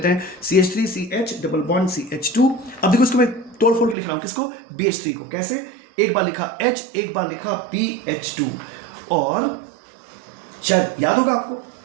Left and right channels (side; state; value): left; drops out; at 4.0 s